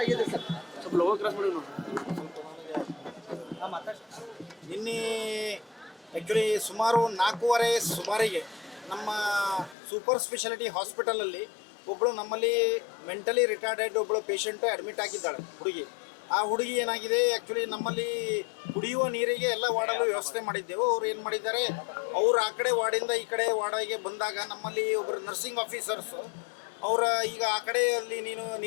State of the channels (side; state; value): right; drops out; at 9.8 s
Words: ನಿನ್ನೆ ಆ್ಯಕ್ಚುಲಿ ಸುಮಾರು 4:15 ಸುಮಾರಿಗೆ ನಮ್ಮ ಸೂಪರ್ ಸ್ಪೆಷಾಲಿಟಿ ಹಾಸ್ಪಿಟಲಲ್ಲಿ ಒಬ್ಬಳು ನಮ್ಮಲ್ಲಿ ಮೆಂಟಲಿ ರಿಟಾರ್ಡೆಡ್ ಒಬ್ಬಳು ಪೇಷಂಟು ಅಡ್ಮಿಟ್ ಆಗಿದ್ದಾಳೆ ಹುಡುಗಿ. ಆ ಹುಡುಗಿ ಏನಾಗಿದೆ, ಆ್ಯಕ್ಚುಲಿ ನಮ್ಮಲ್ಲಿ ಕುಡಿಯುವ ನೀರಿಗೆ ಎಲ್ಲ ವಾರ್ಡಲ್ಲೂ ವ್ಯವಸ್ಥೆ ಮಾಡಿದ್ದೆವು. ಅವ್ರು ಏನು ಮಾಡಿದ್ದಾರೆ, ಅವರು ಆ ಕಡೆ ವಾರ್ಡಿಂದ ಈ ಕಡೆ ವಾರ್ಡಿಗೆ ಬಂದಾಗ ನಮ್ಮಲ್ಲಿ ಒಬ್ಬರು ನರ್ಸಿಂಗ್ ಆಫೀಸರ್ಸು ಅವರ ಈಗ ಆ ಕಡೆಯಲ್ಲಿ ನೀನು